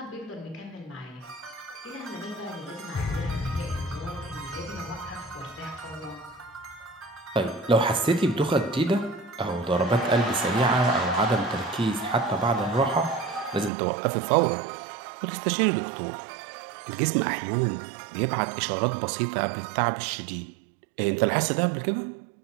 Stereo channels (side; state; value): left; drops out; at 13.7 s